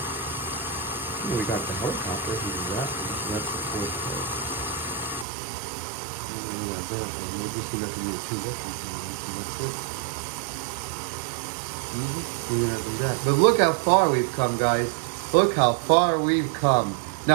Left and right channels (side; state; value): left; drops out; at 5.2 s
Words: We got the helicopter, we do that one, so that's the fourth part. And we got that one, we're just gonna have to do two Russian things, and that's it. We're gonna have to do that. But look how far we've come, guys. Look how far we've come.